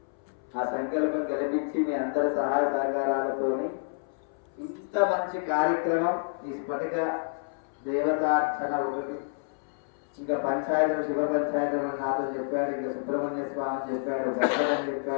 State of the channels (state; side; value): silent; right; 59 dB below the other